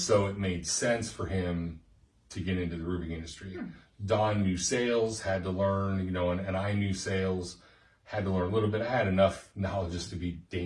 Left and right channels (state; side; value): identical; both; correlation 1.00